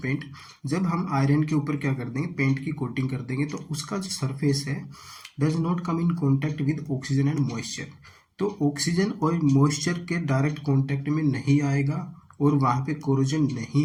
paint, जब हम आयरन के ऊपर क्या कर देंगे, पेंट की कोटिंग कर देंगे, तो उसका जो सरफेस है does not come in contact with oxygen and moisture. तो ऑक्सीजन और मॉइस्चर के डायरेक्ट कॉन्टैक्ट में नहीं आएगा और वहाँ पे कोरोजन नहीं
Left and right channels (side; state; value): both; identical; correlation 1.00